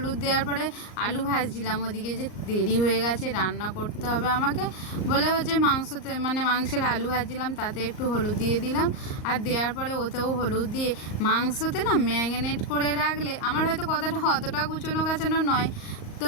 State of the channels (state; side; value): late; right; 38 ms